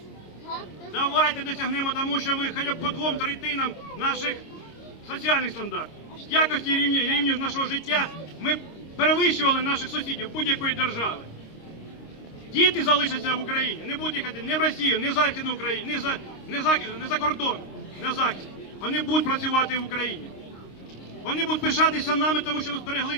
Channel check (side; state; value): right; late; 26 ms